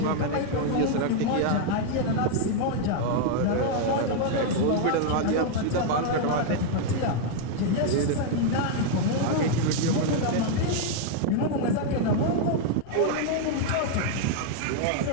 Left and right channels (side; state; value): both; different; correlation 0.00